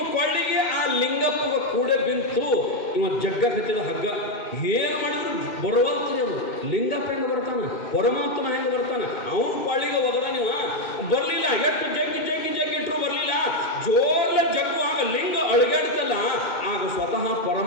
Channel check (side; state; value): right; late; 2.5 ms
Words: ಕೊಳ್ಳಿಗೆ ಆ ಲಿಂಗಪ್ಪ ಕೂಡ ಬಿಂತು. ಇವ ಜಗ್ಗ ಕತ್ತಿದ ಹಗ್ಗ. ಏನು ಮಾಡಿದ್ರು ಬರುವಂತ್ರಿ ಅವನು. ಲಿಂಗಪ್ಪ ಹೆಂಗೆ ಬರ್ತಾನ, ಪರಮಾತ್ಮ ಹೆಂಗೆ ಬರ್ತಾನ, ಅವನು ಕೊಳ್ಳಿಗೆ ಒಗದ ನೀವು ಬರಲಿಲ್ಲ. ಎಷ್ಟು ಜಗ್ಗಿಟ್ರು ಬರಲಿಲ್ಲ. ಜೋರ್ಲ ಜಗ್ಗು ಆಗ ಲಿಂಗ ಅಳಗಾಡ್ತಲ್ಲ, ಆಗ ಸ್ವತಃ